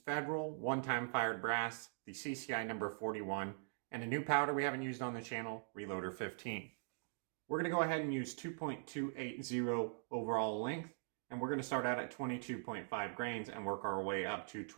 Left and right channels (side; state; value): left; silent; digital silence